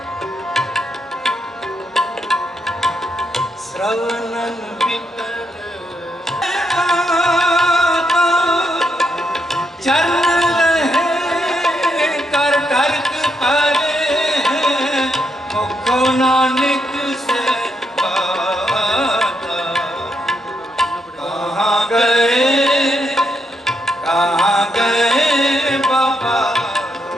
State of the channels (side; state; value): both; normal; correlation 0.78